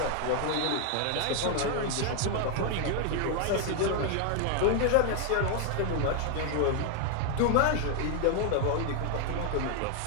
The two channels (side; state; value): both; different; correlation 0.00